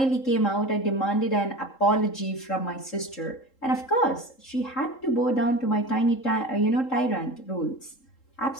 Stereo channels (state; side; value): late; right; 3.7 ms